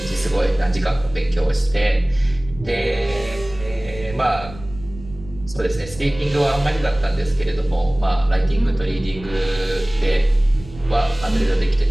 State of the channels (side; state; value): right; noise; rumble, 16 dB below the sound